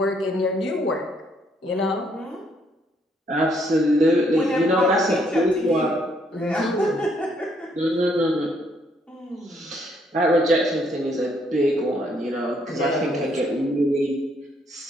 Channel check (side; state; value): both; normal; correlation 0.70